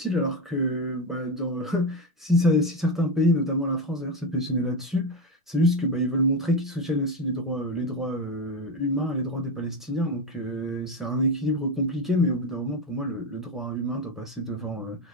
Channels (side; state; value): both; normal; correlation 0.15